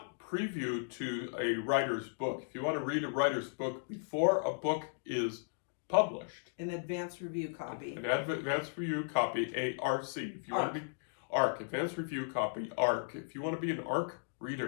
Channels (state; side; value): silent; right; digital silence